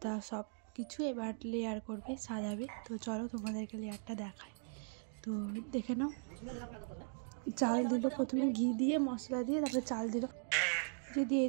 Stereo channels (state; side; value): silent; left; digital silence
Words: সব কিছু এবার লেয়ার করবে, সাজাবে। তো চলো তোমাদেরকে লেয়ারটা দেখাই। তো দেখে নাও। চাল দিল প্রথমে, ঘি দিয়ে মশলা দিয়ে তারপরে চাল দিল, যে দিয়ে